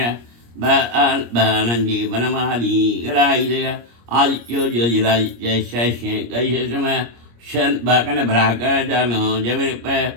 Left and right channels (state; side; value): late; left; 25 ms